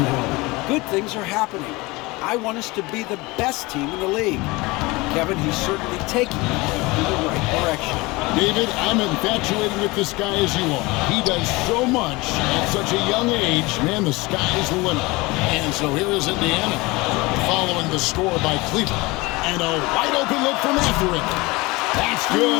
that. Good things are happening. I want us to be the best team in the league. Kevin, he's certainly taking us in the right direction. David, I'm infatuated with this guy as you are. He does so much at such a young age. Man, the sky's the limit. And so here is Indiana, following the score by Cleveland. And a wide open look for Mathurin. That's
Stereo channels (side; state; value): right; quieter; 23.1 dB